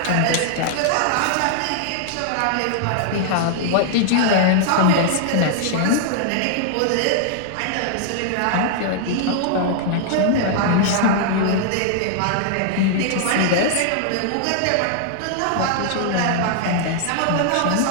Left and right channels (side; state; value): both; different; correlation -0.01